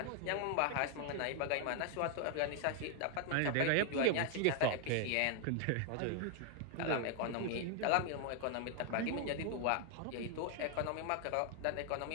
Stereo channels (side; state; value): both; different; correlation 0.00